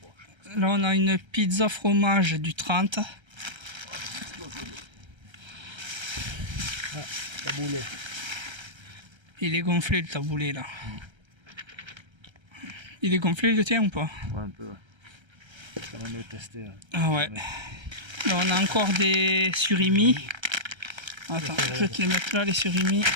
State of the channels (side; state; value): left; late; 1.3 ms